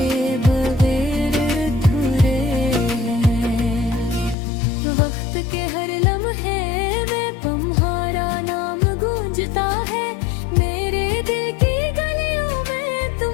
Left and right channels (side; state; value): right; drops out; at 4.4 s